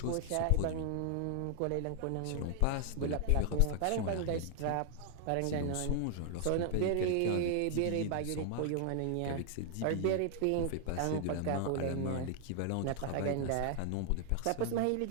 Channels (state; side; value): different; both; correlation 0.00